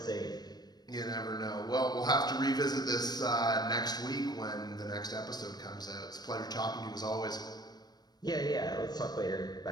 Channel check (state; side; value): late; right; 0.19 ms